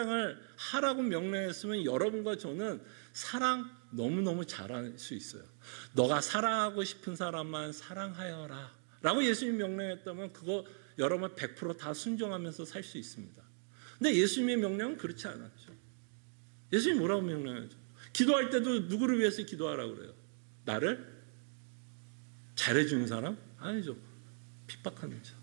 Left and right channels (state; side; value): silent; left; 53 dB below the other